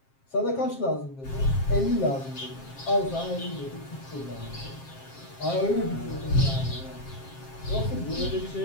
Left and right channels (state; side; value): late; right; 7.5 ms